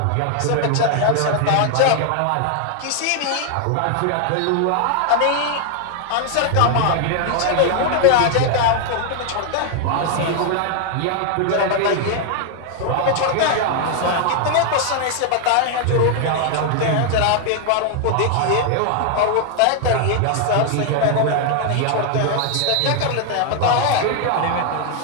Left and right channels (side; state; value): both; different; correlation 0.00